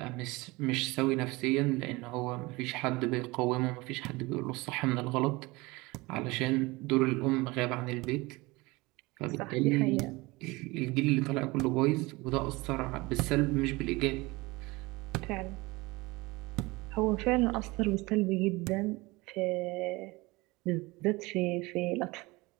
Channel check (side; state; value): left; quieter; 22.8 dB